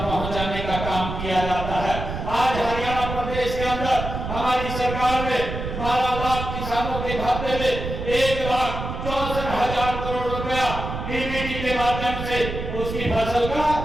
पहुंचाने का काम किया जाता है। आज हरियाणा प्रदेश के अंदर हमारी सरकार ने 12 लाख किसानों के खाते में 1,64,000 करोड़ रुपया DBT के माध्यम से उसकी फसल का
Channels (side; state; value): right; noise; rumble, 6 dB below the sound